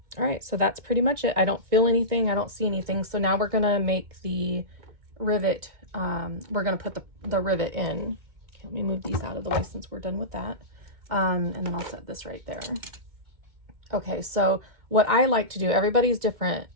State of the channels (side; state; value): left; late; 2.1 ms